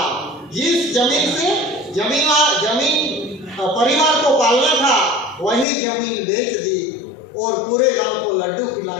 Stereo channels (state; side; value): drops out; right; at 5.7 s